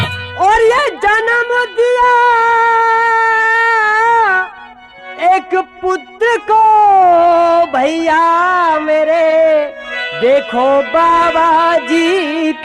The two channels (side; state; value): both; identical; correlation 1.00